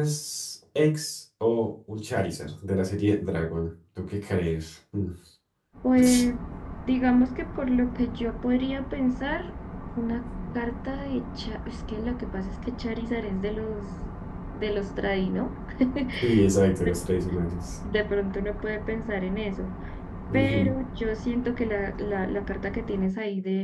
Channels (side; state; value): both; identical; correlation 1.00